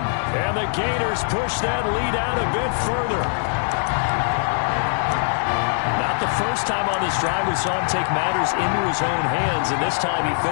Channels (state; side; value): silent; right; digital silence